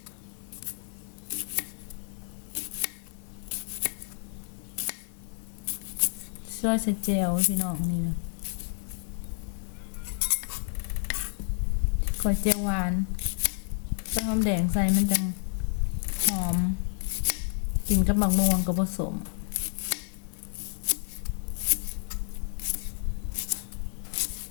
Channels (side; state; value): right; silent; 58 dB below the other